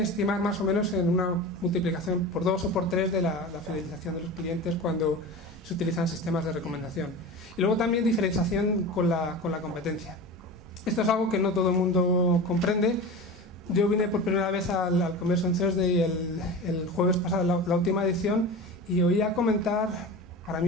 más o menos en una multiplicación por 2 o por 3 de la fidelización de los clientes cuando se utilizan sistemas de recomendación. Y luego también diferenciación con la competencia. Esto es algo que no todo el mundo comprende. Yo vine por primera vez al Conversion Thursday el jueves pasado, la última edición, y oía comentar, para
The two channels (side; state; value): both; normal; correlation 0.30